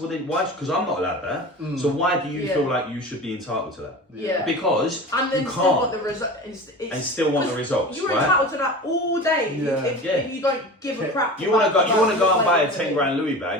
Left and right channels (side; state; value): both; normal; correlation 0.33